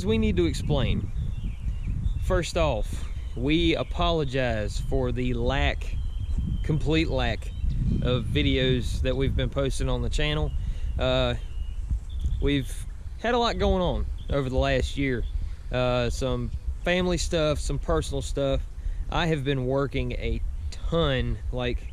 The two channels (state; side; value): identical; both; correlation 1.00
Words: we need to explain. First off, we apologize for the complete lack of videos that we've been posting on the channel. We've had a lot going on over the last year. Some family stuff, some personal stuff. I have been working a ton, like